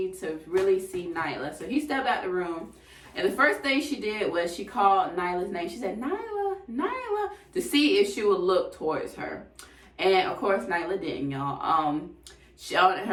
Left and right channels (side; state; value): both; identical; correlation 1.00